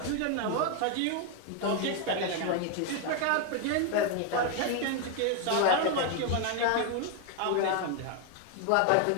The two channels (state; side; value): different; both; correlation 0.01